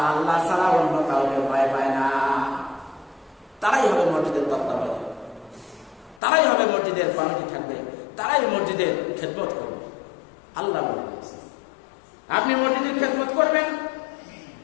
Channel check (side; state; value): right; drops out; at 6.2 s